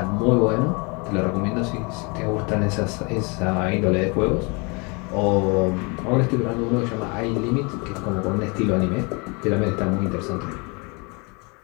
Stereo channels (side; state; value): right; quieter; 30.4 dB